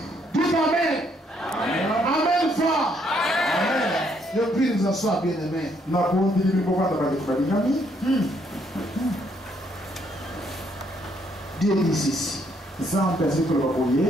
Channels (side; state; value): both; normal; correlation 0.70